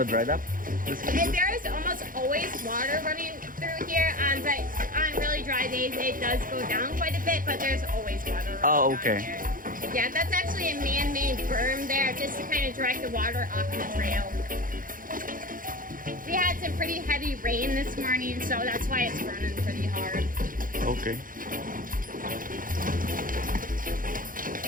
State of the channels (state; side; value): late; left; 0.40 ms